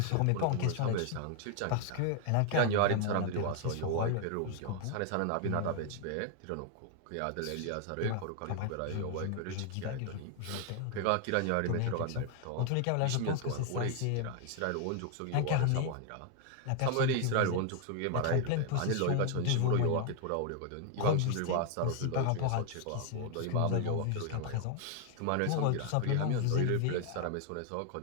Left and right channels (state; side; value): different; both; correlation 0.00